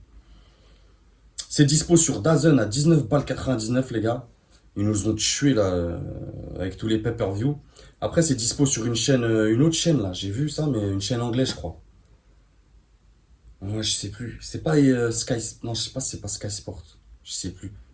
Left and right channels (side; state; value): both; identical; correlation 1.00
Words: C'est dispo sur DAZN à 19 balles 99, les gars. Ils nous ont tués là avec tous les pay-per-view. Après, c'est dispo sur une chaîne, une autre chaîne là. J'ai vu ça, mais une chaîne anglaise, je crois. Ouais, je sais plus. C'est pas Sky. Non, je sais pas si c'est pas Sky Sport. Je sais plus.